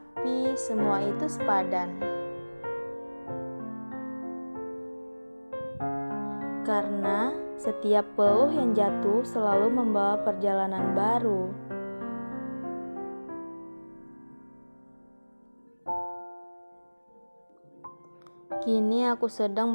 semua itu sepadan. Karena setiap peluh yang jatuh selalu membawa perjalanan baru. Kini aku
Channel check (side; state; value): both; inverted; correlation -1.00